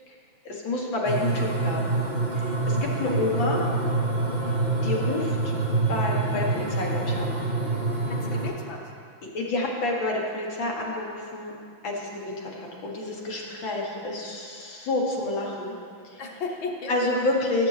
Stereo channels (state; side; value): late; right; 6.0 ms